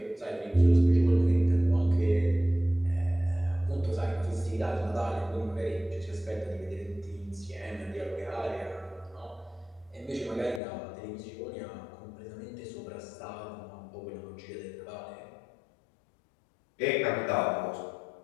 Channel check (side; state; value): right; drops out; at 10.6 s